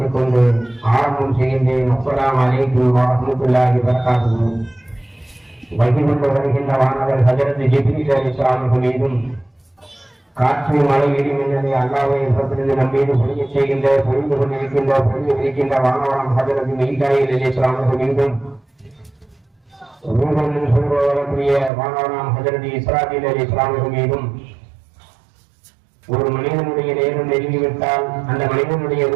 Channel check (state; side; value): drops out; left; at 21.7 s